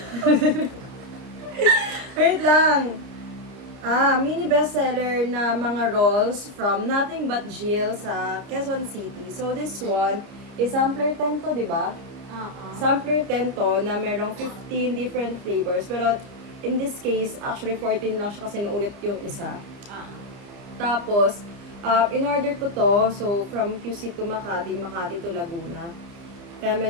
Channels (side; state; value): left; late; 30 ms